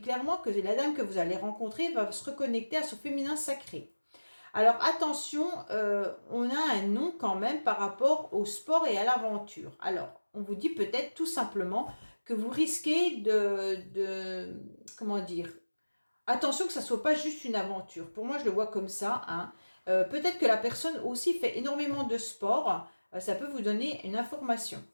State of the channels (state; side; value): inverted; both; correlation -1.00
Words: clairement que la dame que vous allez rencontrer va se reconnecter à son féminin sacré. Alors attention, on a un nom quand même par rapport au sport et à l'aventure. Alors, on vous dit peut-être tout simplement que vous risquez comment dire, attention que ça ne soit pas juste une aventure. Pour moi, je le vois comme ça, hein. Peut-être que la personne aussi fait énormément de sport. Ça peut vous donner une information.